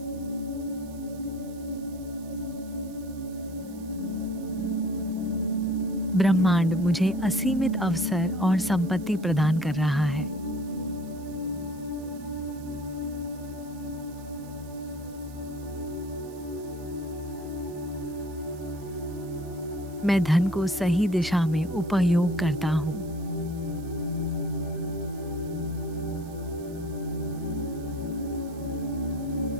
ब्रह्मांड मुझे असीमित अवसर और संपत्ति प्रदान कर रहा है। मैं धन को सही दिशा में उपयोग करता हूँ।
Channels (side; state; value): right; noise; hiss, 23 dB below the sound